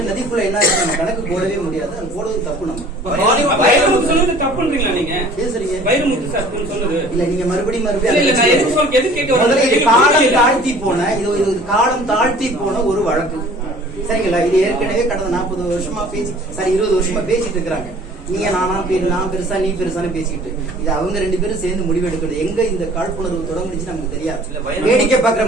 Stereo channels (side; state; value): both; normal; correlation 0.49